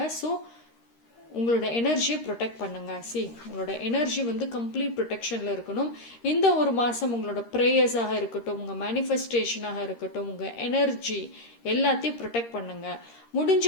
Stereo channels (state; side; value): late; right; 13 ms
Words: ஸோ உங்களோட எனர்ஜியை ப்ரொடெக்ட் பண்ணுங்க. உங்களோட எனர்ஜி வந்து கம்ப்ளீட் ப்ரொடெக்ஷனில் இருக்கணும். இந்த ஒரு மாதம் உங்களோட ப்ரேயர்ஸாக இருக்கட்டும், உங்கள் மேனிஃபெஸ்டேஷனாக இருக்கட்டும், உங்கள் எனர்ஜி எல்லாத்தையும் ப்ரொடெக்ட் பண்ணுங்க. முடிஞ்ச